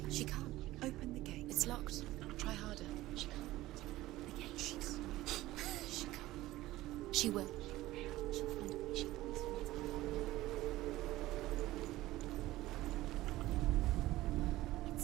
She can't. Open the gate. It's locked. Try harder. She can't. The gate. She can't. She can't. She will. She'll find a way. She will.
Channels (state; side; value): quieter; left; 16.9 dB